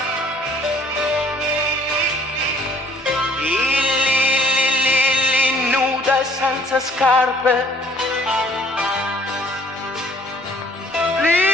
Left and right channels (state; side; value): normal; both; correlation 0.58